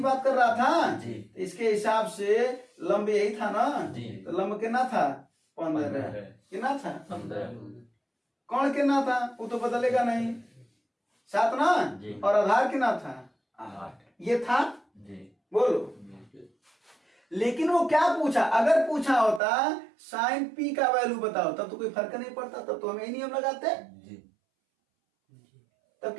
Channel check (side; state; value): left; drops out; at 19.4 s